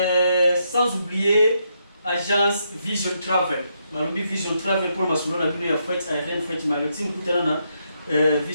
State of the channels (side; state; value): both; inverted; correlation -0.79